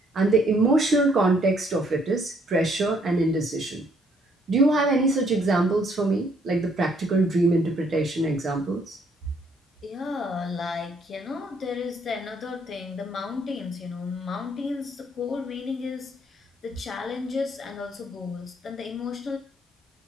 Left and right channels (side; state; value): both; normal; correlation 0.67